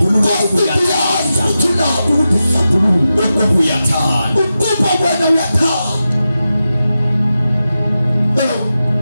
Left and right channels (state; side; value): inverted; both; correlation -0.91